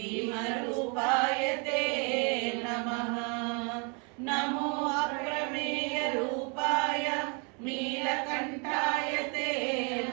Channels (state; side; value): quieter; left; 35.3 dB